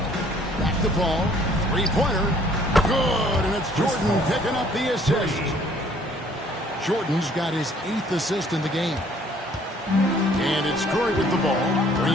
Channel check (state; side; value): normal; both; correlation 0.59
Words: Back to Paul. Three-pointer. Good, and it's Jordan picking up the assist. Jordan's got his 8th assist in the game. And it's Curry with the ball,